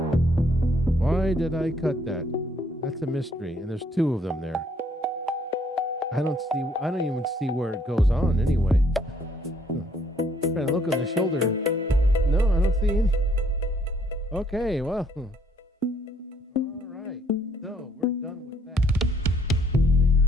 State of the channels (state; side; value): normal; both; correlation 0.66